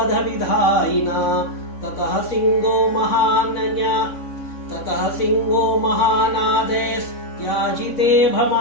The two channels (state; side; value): late; right; 3.6 ms